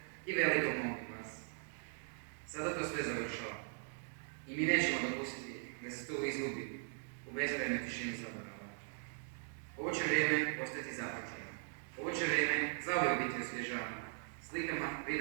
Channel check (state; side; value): silent; left; 51 dB below the other